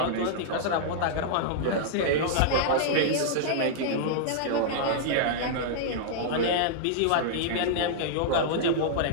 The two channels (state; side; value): different; both; correlation -0.02